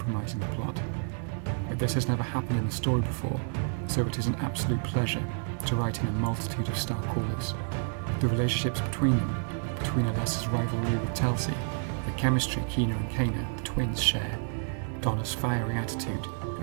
the plot. But this has never happened in the story before, so it is an absolute pleasure to write in a multitude of Starcallers. The relationships between them, between Alessa's rivalry with Telsey, the chemistry Kina and Kana, the twins, share, Donna's fiery attitude,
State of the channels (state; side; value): silent; left; 58 dB below the other